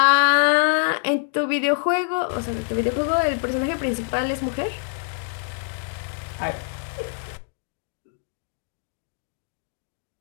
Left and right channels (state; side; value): silent; right; digital silence